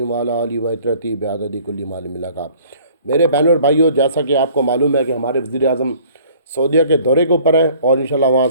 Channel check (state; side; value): inverted; both; correlation -0.54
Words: व अला आलिहि व इत्रती बिअददि कुल्ली मालिम मिलका। मेरे बहनों और भाइयों, जैसा कि आपको मालूम है कि हमारे वज़ीर आज़म सऊदीया के दौरे के ऊपर है और इंशाल्लाह वहाँ